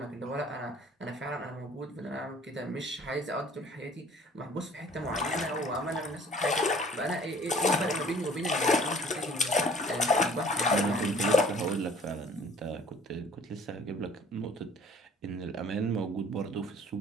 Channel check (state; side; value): normal; both; correlation 0.53